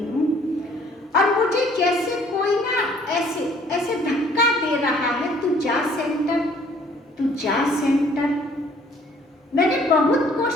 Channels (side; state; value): both; normal; correlation 0.58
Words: हूँ और मुझे जैसे कोई ना ऐसे ऐसे धक्का दे रहा है, तू जा सेंटर, तू जा सेंटर। मैंने बहुत